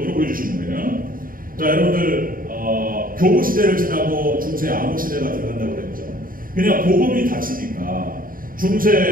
보여주시는 거예요. 자, 여러분들 교부 시대를 지나고 중세 암흑 시대가 들어간다고 그랬죠. 그냥 복음이 닫히니까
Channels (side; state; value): left; late; 0.41 ms